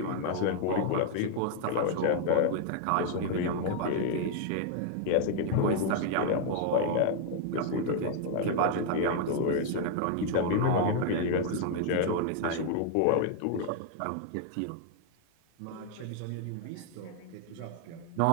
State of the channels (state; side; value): different; both; correlation 0.00